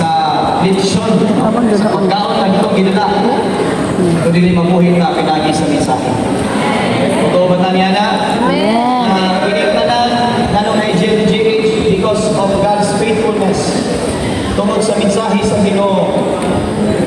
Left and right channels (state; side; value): identical; both; correlation 1.00